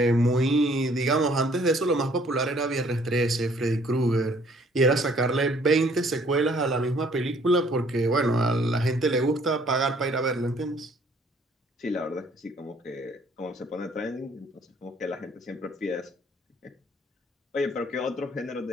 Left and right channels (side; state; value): both; normal; correlation 0.60